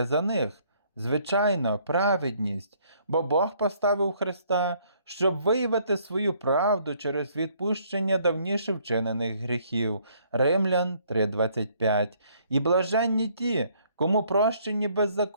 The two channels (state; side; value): inverted; both; correlation -0.64